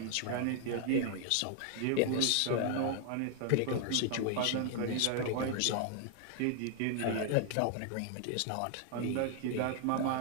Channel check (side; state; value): both; different; correlation 0.00